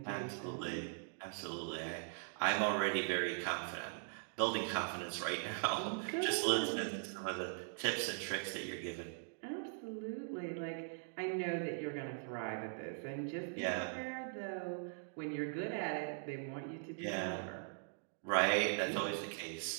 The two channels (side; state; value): left; silent; digital silence